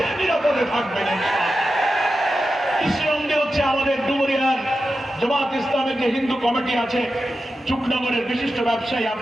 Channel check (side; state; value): both; normal; correlation 0.91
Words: নিরাপদে থাকবেন। কৃষ্ণনন্দী হচ্ছে আমাদের ডুমুরিয়ার জামাত ইসলামের যে হিন্দু কমিটি আছে, চুকনগরের বিশিষ্ট ব্যবসায়ী,